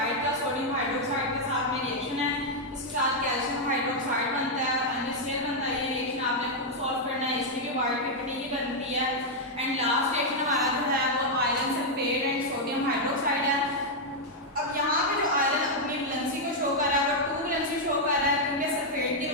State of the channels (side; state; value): both; normal; correlation -0.02